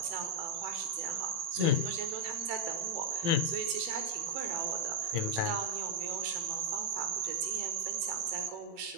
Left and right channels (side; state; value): left; late; 18 ms